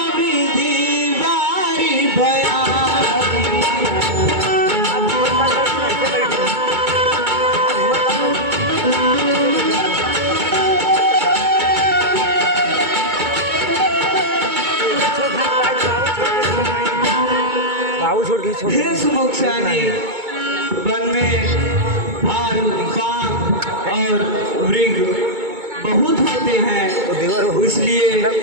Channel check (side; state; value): left; late; 2.2 ms